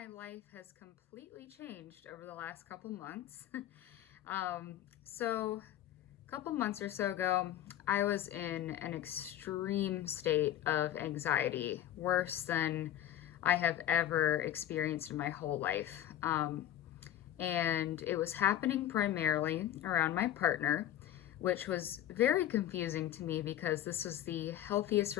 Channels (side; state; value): right; quieter; 12.0 dB